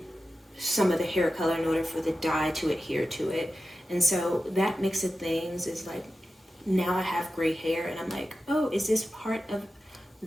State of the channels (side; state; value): both; normal; correlation 0.92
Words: hair color in order for the dye to adhere to it. And so that mix of things is like, now I have gray hair and I'm like, oh, is this part of